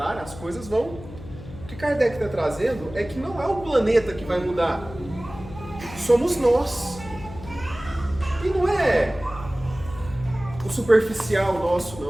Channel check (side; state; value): left; noise; hum, 15 dB below the sound